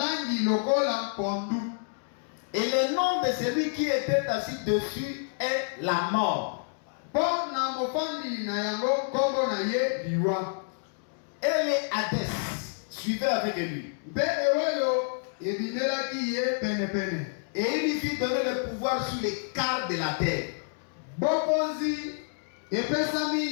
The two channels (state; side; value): silent; right; digital silence